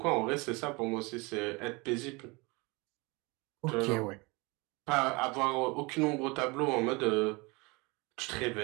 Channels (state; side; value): quieter; left; 26.4 dB